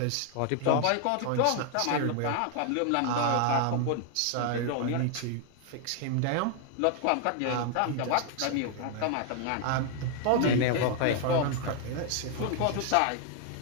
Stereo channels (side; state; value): both; different; correlation 0.00